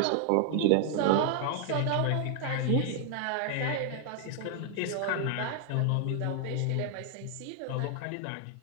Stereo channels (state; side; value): different; both; correlation 0.00